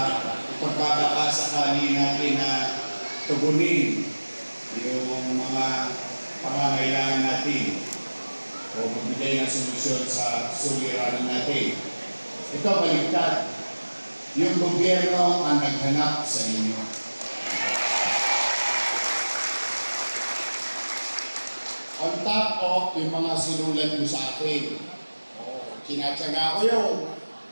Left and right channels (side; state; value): both; inverted; correlation -1.00